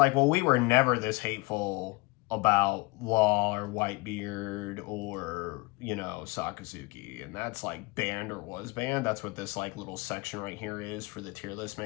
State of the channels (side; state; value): right; quieter; 25.4 dB